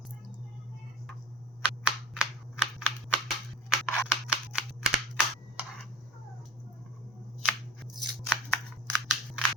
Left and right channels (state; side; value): normal; both; correlation 0.38